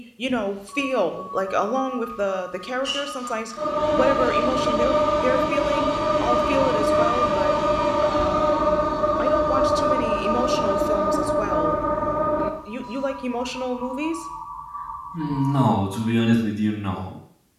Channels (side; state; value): both; identical; correlation 1.00